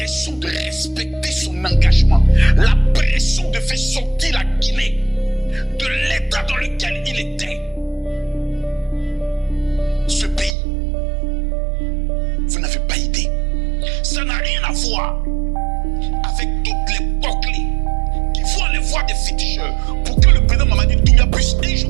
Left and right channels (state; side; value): drops out; left; at 10.6 s